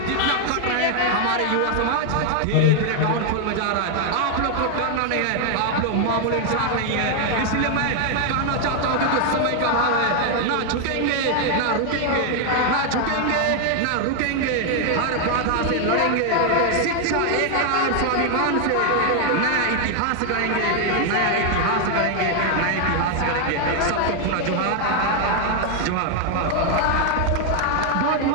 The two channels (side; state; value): both; different; correlation 0.00